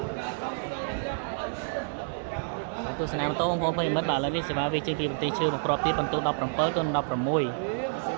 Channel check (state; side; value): silent; left; digital silence